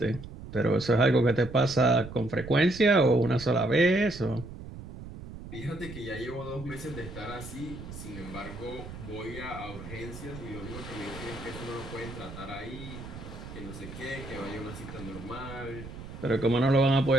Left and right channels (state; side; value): noise; right; rumble, 12 dB below the sound